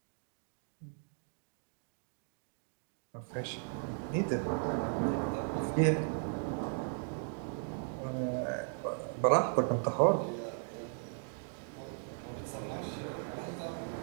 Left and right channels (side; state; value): left; silent; 53 dB below the other